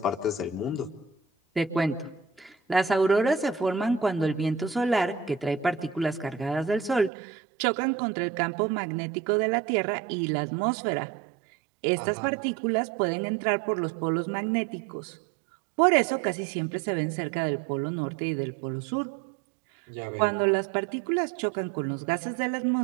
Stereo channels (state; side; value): drops out; left; at 7.1 s